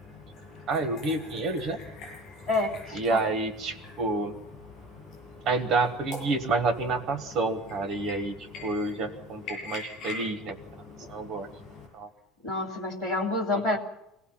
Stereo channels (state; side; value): normal; both; correlation 0.37